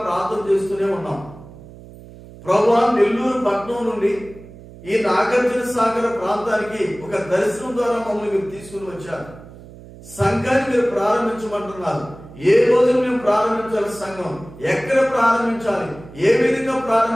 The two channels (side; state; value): right; noise; hum, 18 dB below the sound